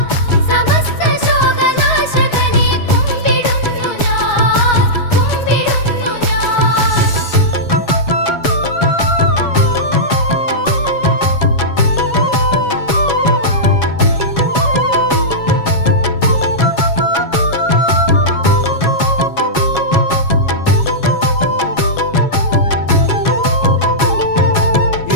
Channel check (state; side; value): late; right; 7.2 ms